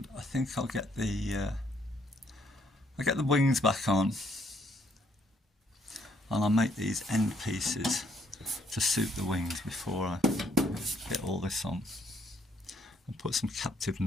I think I'll get the wings back on, and I'll make these end pieces to suit the wings before I get all this on. And put some captive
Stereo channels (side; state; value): both; normal; correlation 0.68